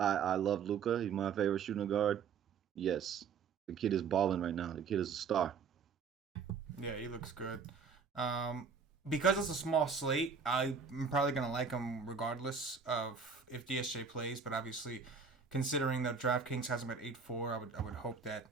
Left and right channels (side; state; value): left; quieter; 5.8 dB